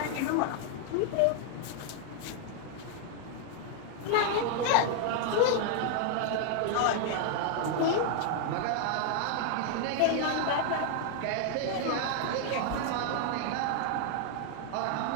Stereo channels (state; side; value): different; both; correlation 0.00